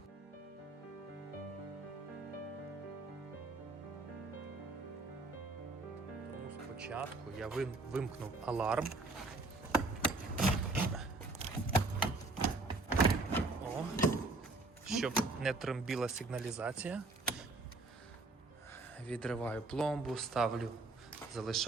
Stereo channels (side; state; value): left; quieter; 3.3 dB